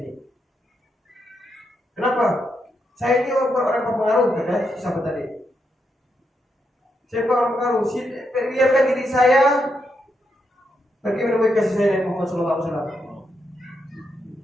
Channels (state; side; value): normal; both; correlation 0.82